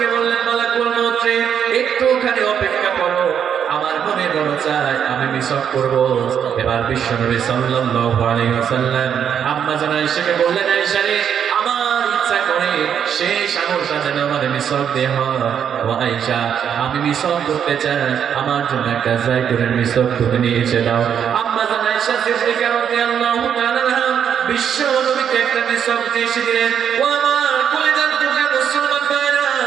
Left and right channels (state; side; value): quieter; left; 8.3 dB